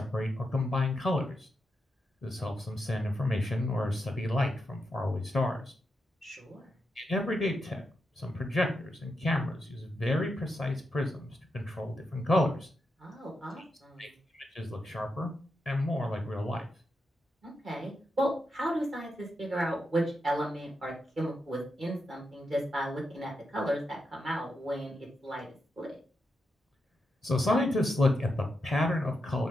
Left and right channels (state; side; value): normal; both; correlation 0.85